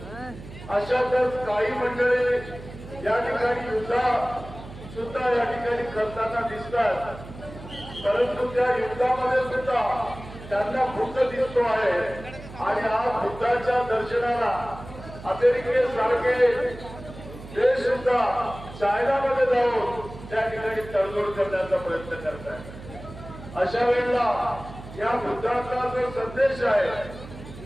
अशातच काही मंडळी या ठिकाणी युद्ध सुद्धा या ठिकाणी करताना दिसतात, परंतु त्या युद्धामध्ये सुद्धा त्यांना बुद्ध दिसतो आहे आणि आज बुद्धाच्या दर्शनाला अमेरिकेसारखे देश सुद्धा चायनामध्ये जाऊन त्या ठिकाणी तडजोड करण्याचा प्रयत्न करत आहे। अशा वेळेला या बुद्धाचा जो संदेश आहे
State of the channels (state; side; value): noise; right; hum, 15 dB below the sound